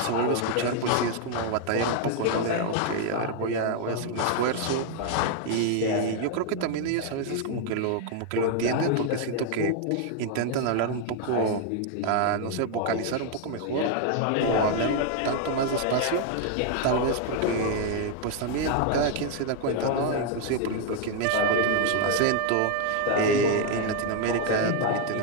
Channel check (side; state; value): both; different; correlation 0.00